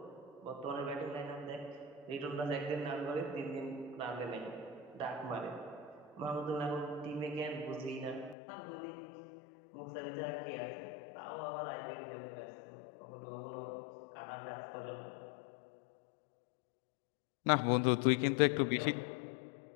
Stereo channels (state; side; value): drops out; right; at 8.3 s